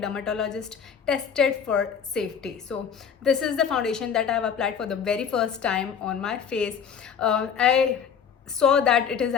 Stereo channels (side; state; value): right; quieter; 7.3 dB